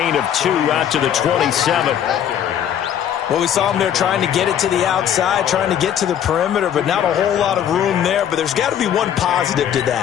of 2 out to the 27. Well, we saw him there trying to get it to the outside, trying to get to the perimeter, but not a whole lot of room there. But there's got to be one positive to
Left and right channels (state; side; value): quieter; right; 9.6 dB